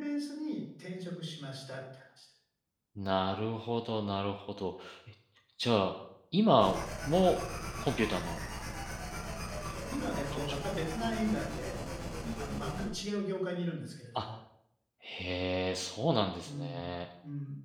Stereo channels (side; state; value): both; identical; correlation 1.00